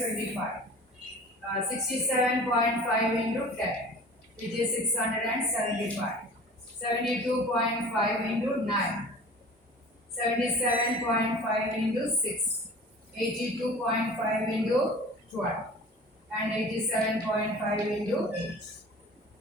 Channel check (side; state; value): both; normal; correlation 0.42